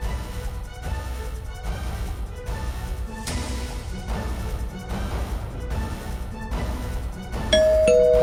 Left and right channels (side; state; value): both; identical; correlation 1.00